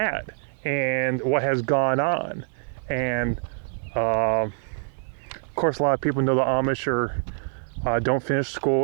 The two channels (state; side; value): silent; left; digital silence